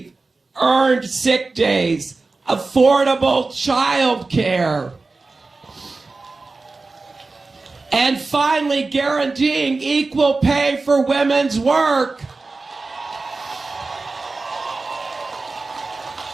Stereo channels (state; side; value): quieter; left; 3.7 dB